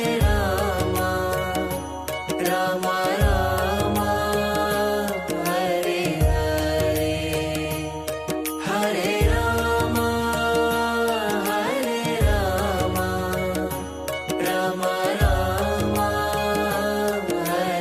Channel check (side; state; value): both; identical; correlation 1.00